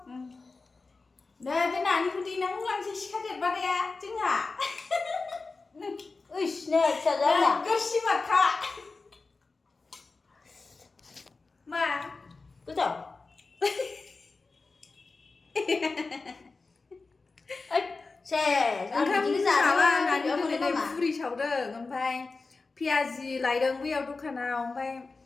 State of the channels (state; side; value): quieter; right; 3.9 dB